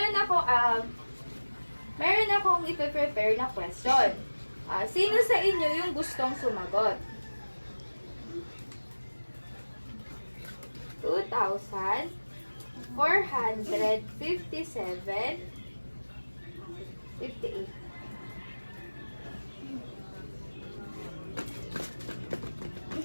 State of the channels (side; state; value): both; inverted; correlation -1.00